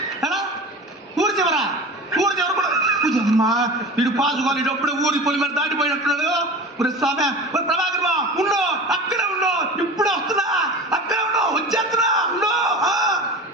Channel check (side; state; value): both; normal; correlation 0.34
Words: ఊరి చివరా? ఊరి చివర కూడా అమ్మా, వీడు పాసుకోవాలి. అప్పుడే ఊరి పొలి మీద దాటిపోయినట్టున్నాడు. స్వామి ప్రభాకర్ ఉండు, అక్కడే ఉండు, ఇప్పుడే వస్తున్నా, అక్కడే ఉండు, వచ్చేస్తున్నా, ఉండు.